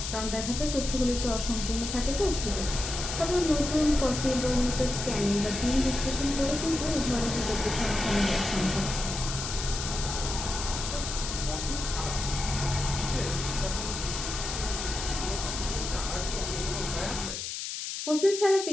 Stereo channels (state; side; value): noise; left; hiss, 5 dB below the sound